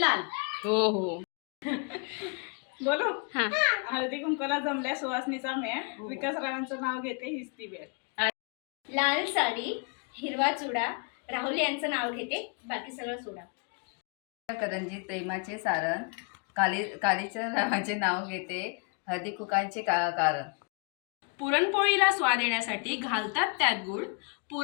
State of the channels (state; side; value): quieter; right; 36.1 dB